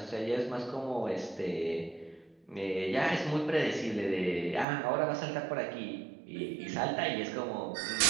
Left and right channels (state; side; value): drops out; left; at 4.7 s